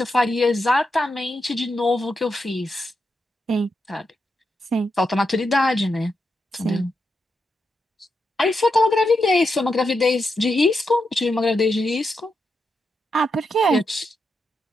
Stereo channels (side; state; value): both; normal; correlation 0.85